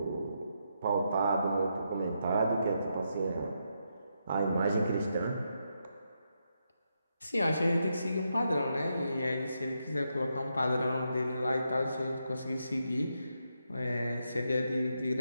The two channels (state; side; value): inverted; both; correlation -0.82